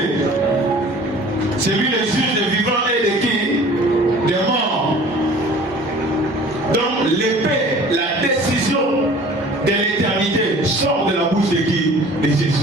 C'est lui le juge des vivants et de qui? Des morts. Donc l'épée, la décision de l'éternité sort de la bouche de qui? De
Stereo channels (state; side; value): normal; both; correlation 0.47